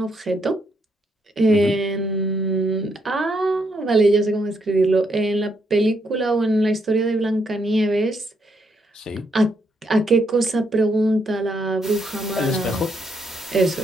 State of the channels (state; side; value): normal; both; correlation 0.76